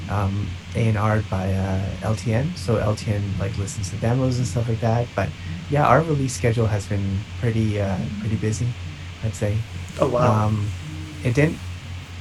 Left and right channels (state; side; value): identical; both; correlation 1.00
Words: A&R'd by LTN. So LTN like listens to demos and stuff like that. But yeah, our release schedule has been pretty busy, I'd say. Oh, wow. Um, it didn't.